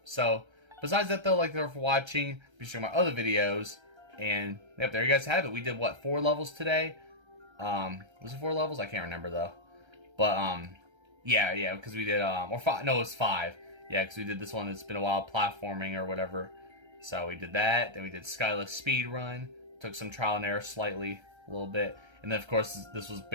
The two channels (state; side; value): late; left; 1.3 ms